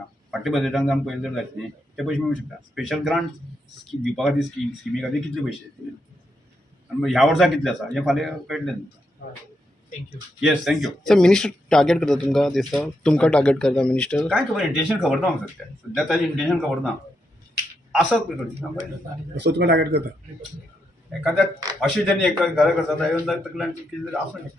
फाटल्या बजेटान जावन पयले जर जायत न्ही ते पयशे मेळूंक शकता. स्पेशल ग्रांट दिवपा खातीर स्किमी खातीर कितले पयशे आनी ह्या वर्सा कितले आसा हें फाल्यां कळटलें तुमकां. Thank you. Yes thank you. Sir minister target करता तुमकां दिसता तुमकां टार्गेट करता मिनिस्टर. काय खबर इंटेन्शन खबर ना म्हाका सध्या ताजें इंटेन्शन खबर ना आसत पळय सो तुका टार्गेट करता एखाद्या अशें जेन्ना एक गजाल करता येवन तकल्यान कितें तरी आसूंक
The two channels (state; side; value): normal; both; correlation 0.82